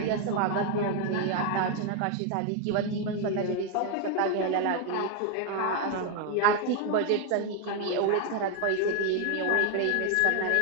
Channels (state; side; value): different; both; correlation 0.00